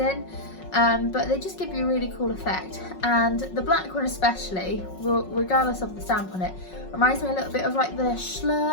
but they just give you a really cool effect. And the black one especially, regardless of the stamp on it, reminds me a little bit of like the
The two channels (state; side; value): late; right; 5.4 ms